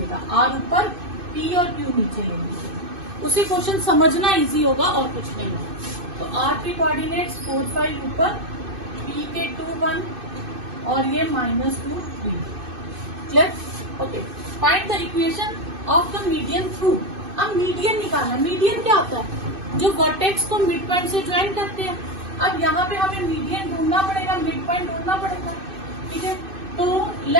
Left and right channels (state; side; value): late; left; 2.6 ms